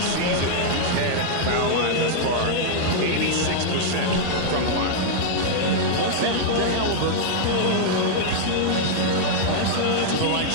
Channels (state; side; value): different; both; correlation -0.01